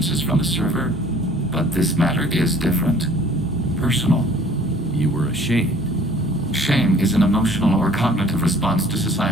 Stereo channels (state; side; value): normal; both; correlation 0.54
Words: from the server, but this matter is different. Personal. You were ashamed. Shame is an emotional or cognitive response to